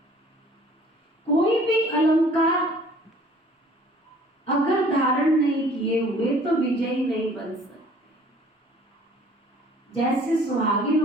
कोई भी अलंकार अगर धारण नहीं किए हुए तो विजयी नहीं बन सकते। जैसे सुहागिन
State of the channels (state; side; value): normal; both; correlation 0.53